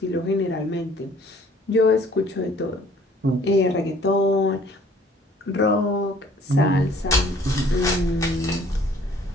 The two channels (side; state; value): both; normal; correlation 0.56